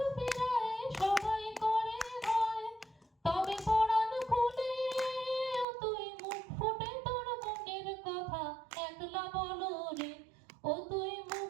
ফিরায় সবাই করে ভয়। তবে পরাণ খুলে তুই মুখ ফুটে তোর মনের কথা একলা বলো রে। ও তুই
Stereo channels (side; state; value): left; drops out; at 5.7 s